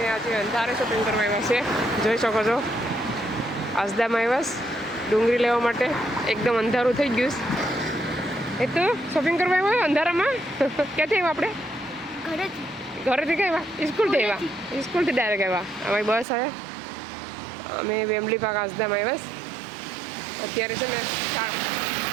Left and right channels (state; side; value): drops out; left; at 16.2 s